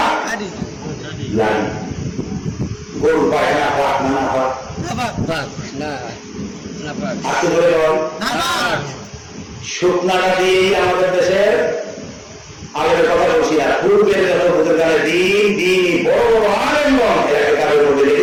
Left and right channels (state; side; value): identical; both; correlation 1.00